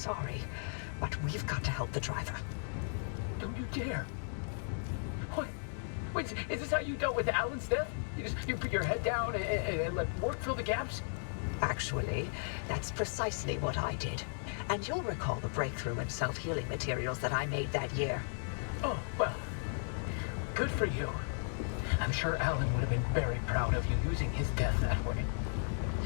but we've got to help the driver. Don't you dare. What? Wait, is this how you dealt with Alan's death? You put your head down and let work fill the gaps? Actually, that's precisely what I did. And you'll recall the breakthrough in self-healing materials that I made that year. Oh, well, good for you. I'm sure Alan would have been very proud of you using his death that way.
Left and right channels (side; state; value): right; silent; digital silence